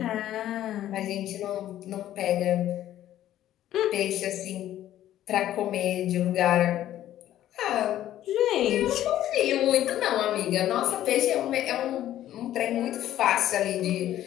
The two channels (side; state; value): right; quieter; 12.6 dB